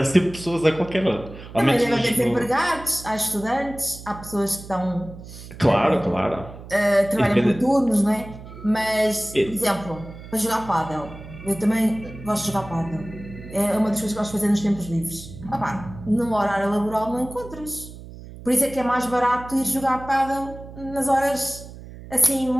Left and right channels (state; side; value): noise; right; hum, 15 dB below the sound